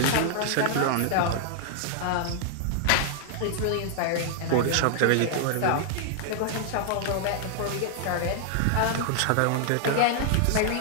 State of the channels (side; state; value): both; different; correlation 0.00